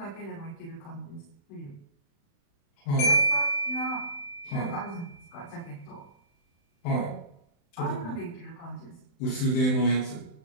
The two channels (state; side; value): late; right; 35 ms